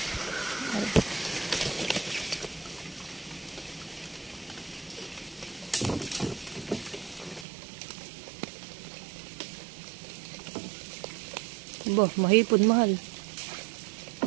Bah, mahipon mahal.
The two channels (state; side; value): drops out; left; at 7.5 s